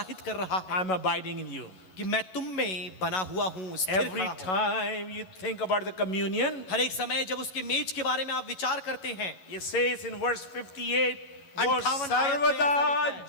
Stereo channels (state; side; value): late; right; 11 ms